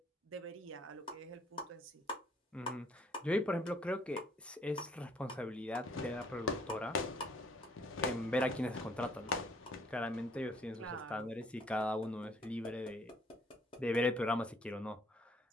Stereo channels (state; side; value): normal; both; correlation 0.62